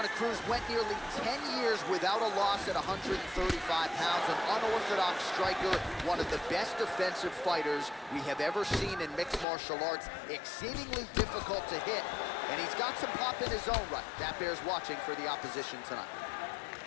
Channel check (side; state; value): right; drops out; at 9.5 s